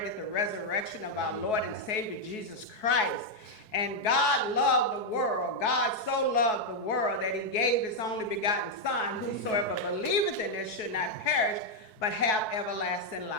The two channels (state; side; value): late; right; 4.7 ms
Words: the resurrection of our Lord and Savior Jesus Christ. And God loved the world. God so loved the world that he gave his only begotten Son, whosoever believeth in this should not perish, but have everlasting